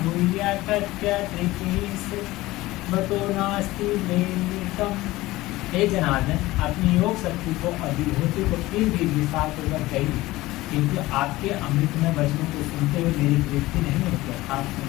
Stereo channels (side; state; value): right; quieter; 18.5 dB